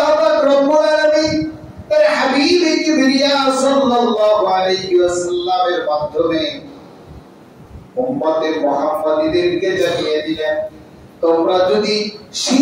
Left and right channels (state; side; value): identical; both; correlation 1.00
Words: পাক রব্বুল আলামিন তার হাবিব কিবরিয়া সাল্লাল্লাহু আলাইহি ওয়াসাল্লামের মাধ্যমে উম্মতে মুহাম্মাদীদেরকে জানিয়ে দিলেন, তোমরা যদি